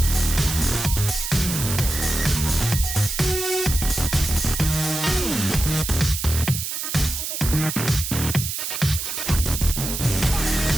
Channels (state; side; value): noise; right; hiss, 4 dB below the sound